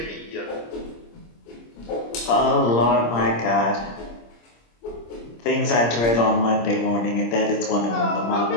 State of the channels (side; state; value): right; late; 26 ms